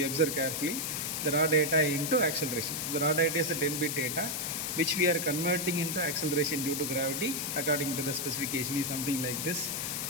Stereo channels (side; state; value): left; noise; hiss, 2 dB below the sound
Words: observe carefully, the raw data into acceleration. The raw data is a 10-bit data which we are converting into acceleration due to gravity according to the specification is something like this.